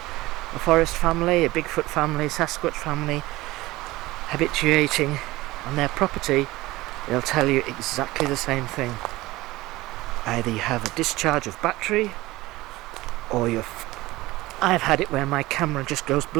a forest family, a Bigfoot family, Sasquatch family, habituating on their property, they'll tell you exactly the same thing. Either you have a discharge of battery, or I've had it where my camera just goes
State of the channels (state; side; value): quieter; left; 19.0 dB